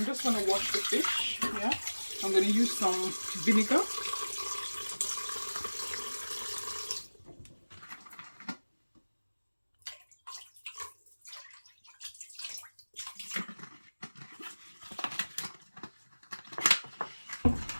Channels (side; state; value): both; inverted; correlation -1.00